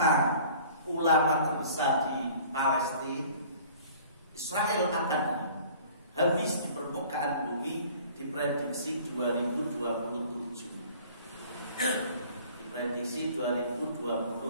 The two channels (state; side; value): inverted; both; correlation -0.49